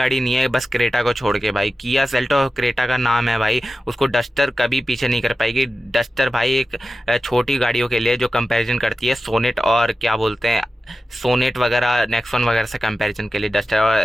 नहीं है बस क्रेटा को छोड़ के। भाई किया सेल्टोस क्रेटा का नाम है भाई, उसको डस्टर कभी पीछे नहीं कर पाएगी। डस्टर भाई एक छोटी गाड़ियों के लिए जो कंपैरिजन करती है सोनेट और क्या बोलते हैं सोनेट वगैरह नेक्सॉन वगैरह से कंपैरिजन के लिए, डस्टर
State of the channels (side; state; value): both; normal; correlation 0.93